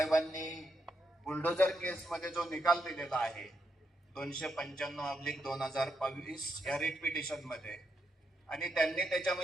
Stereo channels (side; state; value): both; normal; correlation 0.81